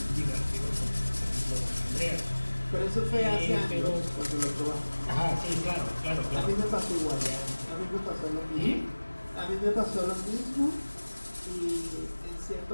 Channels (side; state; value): both; inverted; correlation -1.00